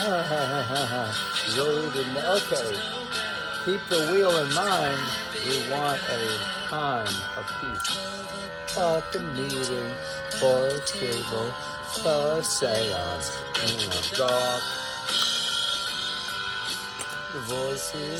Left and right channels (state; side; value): identical; both; correlation 1.00